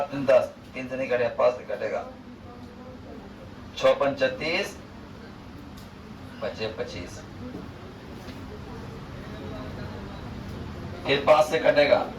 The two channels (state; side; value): identical; both; correlation 1.00